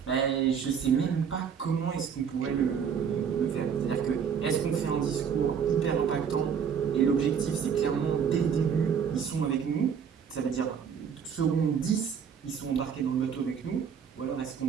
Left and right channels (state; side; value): quieter; left; 7.2 dB